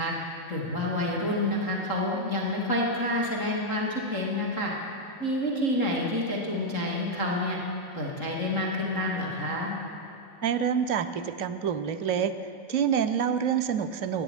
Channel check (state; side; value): late; right; 3.8 ms